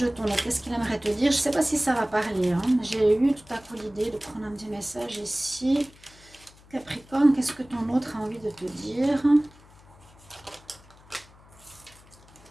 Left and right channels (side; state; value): left; noise; hum, 25 dB below the sound